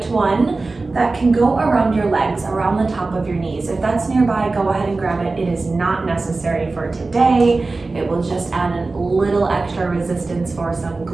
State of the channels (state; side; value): quieter; left; 3.6 dB